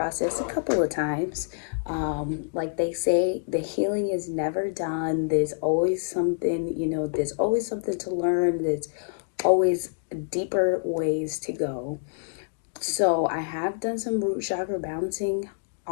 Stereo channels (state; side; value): silent; right; digital silence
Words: a couple of times. Like they say, the healing is never done. There's always something, there's always something to learn. There's always deeper ways to go. So I have done some root chakra balancing